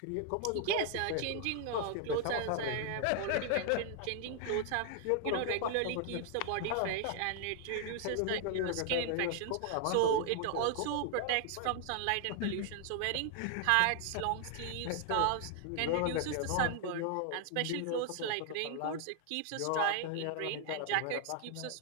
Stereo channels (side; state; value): both; different; correlation 0.00